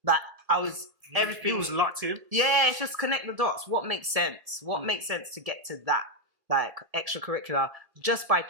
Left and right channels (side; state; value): left; late; 1.7 ms